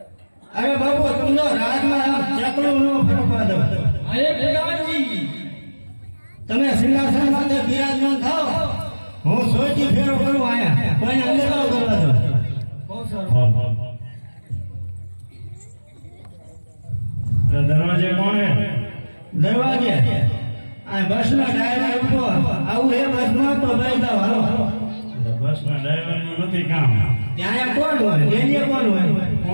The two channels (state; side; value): inverted; both; correlation -1.00